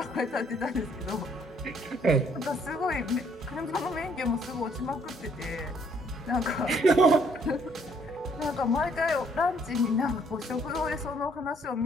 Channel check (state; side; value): normal; both; correlation 0.65